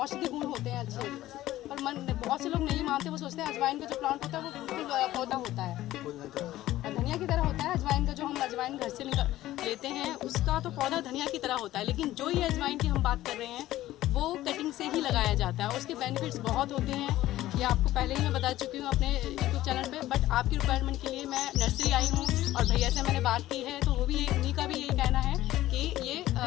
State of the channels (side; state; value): right; quieter; 15.1 dB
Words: गुण होते हैं अच्छे, पर बहुत से लोग नहीं मानते, वो सोचते हैं अजवाइन का जो प्लांट होता है वो बिल्कुल पौधा होता है, धनिया की तरह होता है। अजवाइन का जो हम अजवाइन घर से लेते हैं उसका तो पौधा धनिया की तरह होता है, लेकिन जो ये अजवाइन की हम बात कर रहे हैं वो कटिंग से ही लगाया जाता है। उसके बेनिफिट्स बहुत होते हैं, ये आपको पहले ही मैं बता चुकी हूँ अपने यूट्यूब चैनल पे। बट आपकी रिक्वायरमेंट के लिए मैं नर्सरी आई हूँ और भैया से मैंने बात की है, तो वो भी उन्हीं का भी यही कहना है कि ये